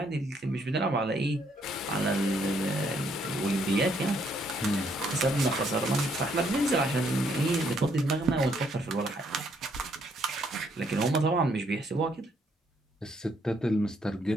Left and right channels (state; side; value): normal; both; correlation 0.70